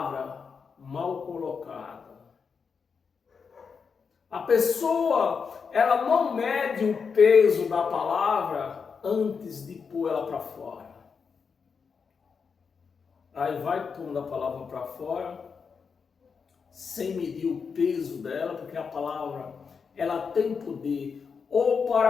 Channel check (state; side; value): quieter; right; 5.8 dB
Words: mal colocada. A pessoa, ela não mede o peso da palavra antes de pôr ela para fora. Aí vai pondo a palavra para fora, sem medir o peso dela, porque a palavra, ela tem poder ou